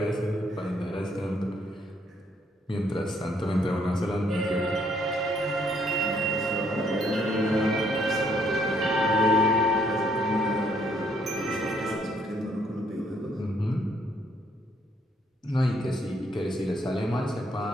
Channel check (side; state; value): both; normal; correlation 0.68